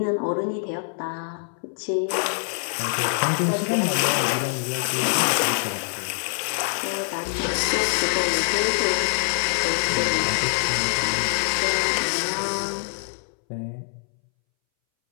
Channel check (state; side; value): silent; right; 62 dB below the other